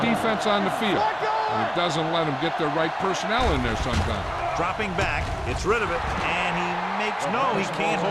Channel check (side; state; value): both; identical; correlation 1.00